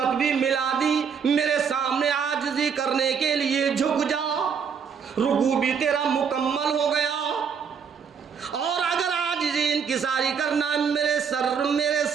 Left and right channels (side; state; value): left; quieter; 6.7 dB